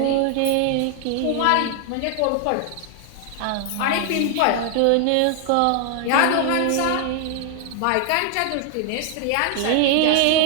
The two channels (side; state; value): both; different; correlation 0.00